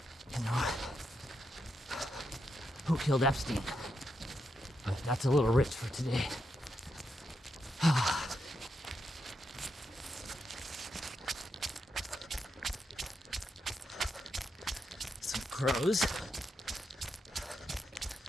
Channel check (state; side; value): normal; both; correlation 0.83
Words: you know, who killed Epstein. But that's a little rich for today. Some crows.